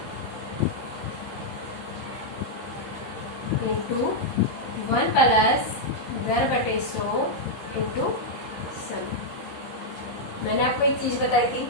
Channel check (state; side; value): late; right; 15 ms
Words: इंटू 1 प्लस दर/100 इंटू समय। मैंने आपको एक चीज बताई थी,